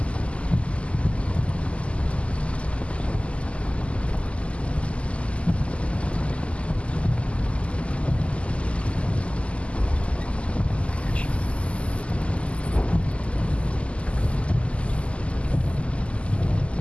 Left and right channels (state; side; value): late; right; 0.057 ms